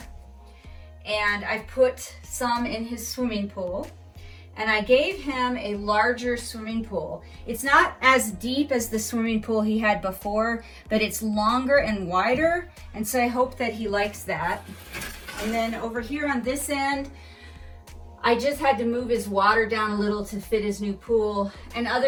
And I've put some in his swimming pool. And I gave him a larger swimming pool. It's not as deep as the swimming pool he had before, but it's longer and wider. And so I hope that he likes that. And then over here on this end, I just had to move his water down a little to fit his new pool. And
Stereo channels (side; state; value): both; identical; correlation 1.00